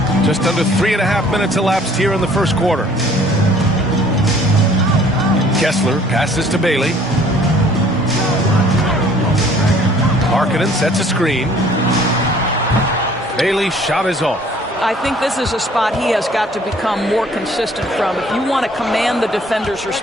Just under 3.5 minutes elapsed here in the first quarter. Kessler passes to Bailey. Markkanen sets a screen. Bailey's shot is off. I think this is a spot he has got to become more consistent from if you want to command the defender's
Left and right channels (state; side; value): normal; both; correlation 0.56